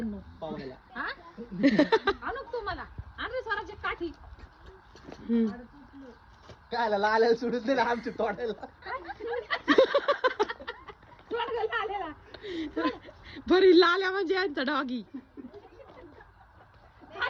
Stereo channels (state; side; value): identical; both; correlation 1.00